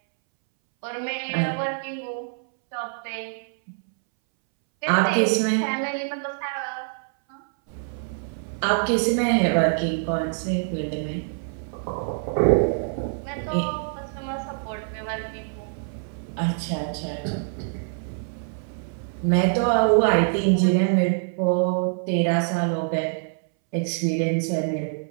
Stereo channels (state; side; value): silent; left; 62 dB below the other